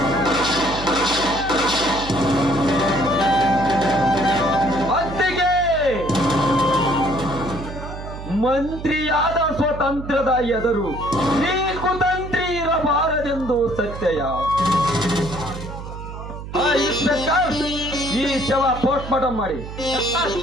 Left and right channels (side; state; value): right; noise; hum, 10 dB below the sound